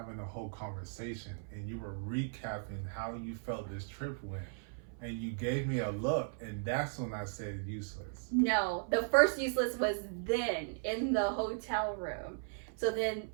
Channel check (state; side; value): silent; left; 53 dB below the other